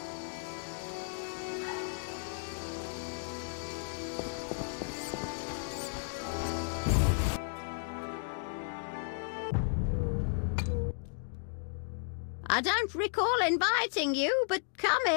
I don't recall inviting you, but come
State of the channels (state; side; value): silent; right; digital silence